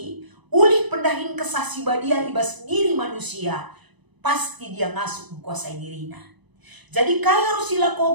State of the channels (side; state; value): left; late; 1.0 ms